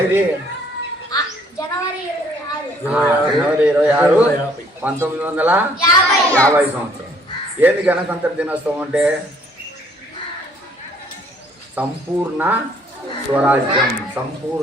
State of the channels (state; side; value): normal; both; correlation 0.61